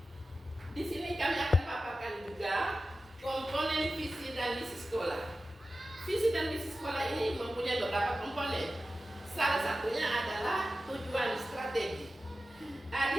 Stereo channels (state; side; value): normal; both; correlation 0.94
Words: Di sini kami akan paparkan juga komponen visi dan misi sekolah. Visi dan misi sekolah ini mempunyai beberapa komponen. Salah satunya adalah tujuan strategi. Di